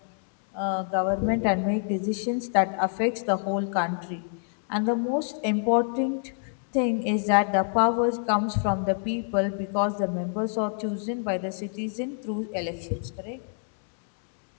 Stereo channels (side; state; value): right; silent; 60 dB below the other